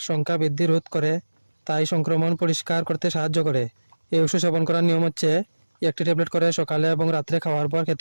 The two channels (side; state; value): both; inverted; correlation -1.00